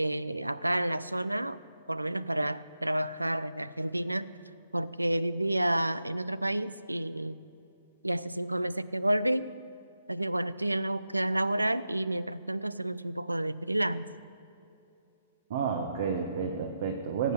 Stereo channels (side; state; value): both; inverted; correlation -0.89